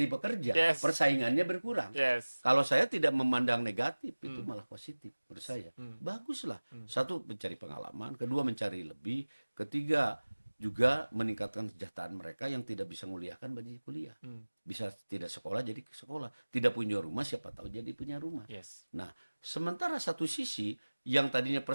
bekerja. Yes. Persaingannya berkurang. Yes. Kalau saya tidak memandang negatif, itu malah positif menurut saya. Baguslah. Satu, mencari pengalaman. Kedua, mencari lebih. Ketiga, juga meningkatkan kesejahteraan mereka yang tidak bisa menguliahkan bagi kuliah. Bisa tidak sekolah jadi sekolah. Tidak punya rumah, siapa tahu jadi punya rumah. Yes. Nah, sementara satu sisi yang tadinya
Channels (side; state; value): both; inverted; correlation -1.00